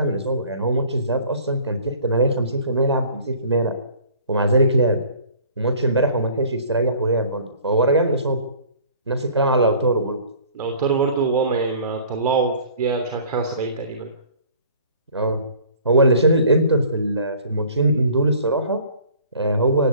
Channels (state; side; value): inverted; both; correlation -0.50